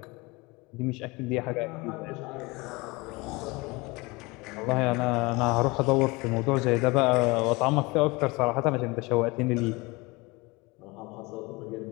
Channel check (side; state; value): right; quieter; 24.4 dB